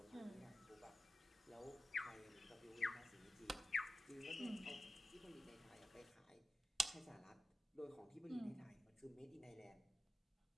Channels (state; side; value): normal; both; correlation 0.92